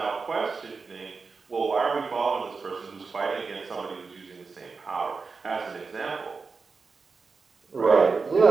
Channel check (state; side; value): quieter; left; 4.6 dB